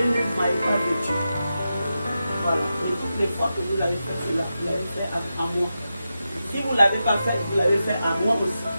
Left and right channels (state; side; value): inverted; both; correlation -0.90